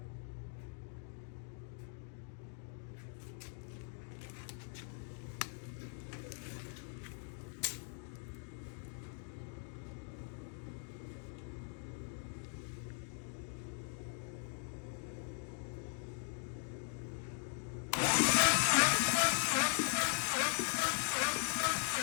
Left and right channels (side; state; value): right; silent; 51 dB below the other